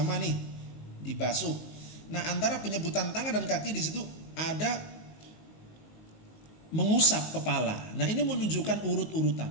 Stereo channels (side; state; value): right; late; 19 ms